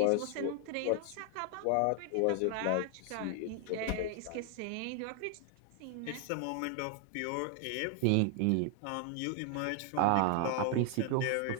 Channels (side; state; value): both; different; correlation 0.00